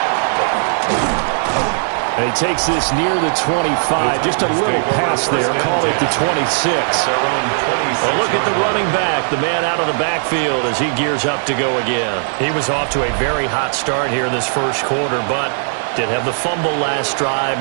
And he takes this near the 25. Just a little pass there. Call it the 26. Well, look at the running back, the man out of the backfield as he gears up to go again. He was off to a very hot start here in this first quarter, but did have the fumble last drive.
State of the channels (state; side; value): silent; left; digital silence